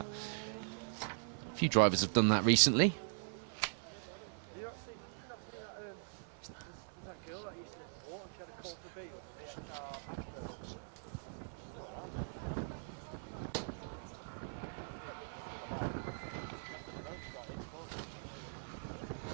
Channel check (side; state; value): left; silent; 50 dB below the other